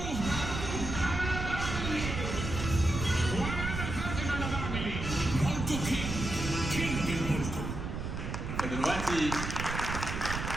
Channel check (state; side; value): noise; right; rumble, 4 dB below the sound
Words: وانا فاهم انا بعمل ايه. موتو كينج المولتو. فدلوقتي